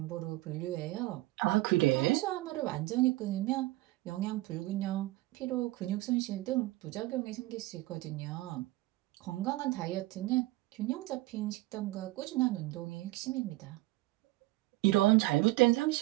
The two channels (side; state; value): left; quieter; 19.1 dB